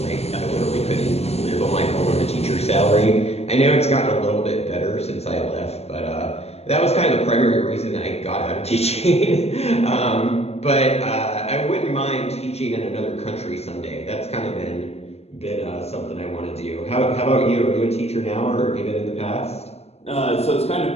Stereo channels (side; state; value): right; late; 0.30 ms